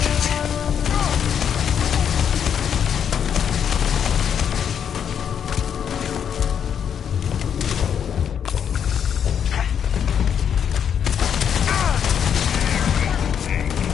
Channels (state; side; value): quieter; right; 8.2 dB